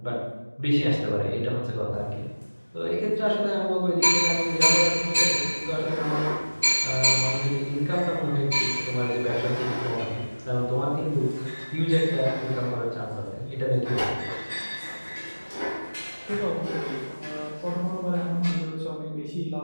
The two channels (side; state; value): both; inverted; correlation -1.00